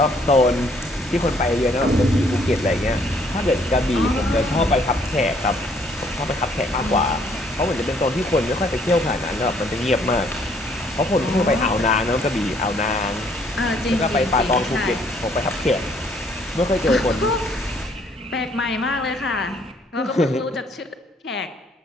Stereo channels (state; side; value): normal; both; correlation 0.64